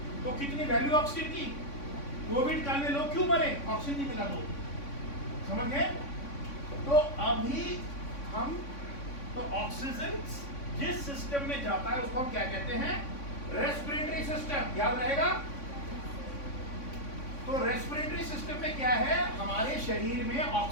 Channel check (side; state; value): right; late; 3.5 ms